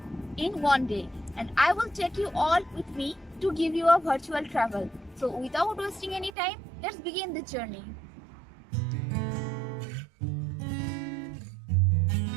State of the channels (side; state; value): left; drops out; at 6.3 s